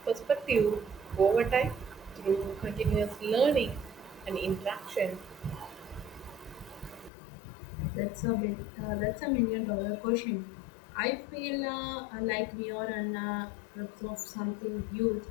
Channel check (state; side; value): drops out; right; at 7.1 s